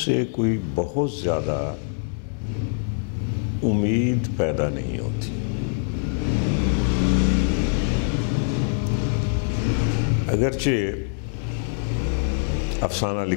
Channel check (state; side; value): silent; right; 63 dB below the other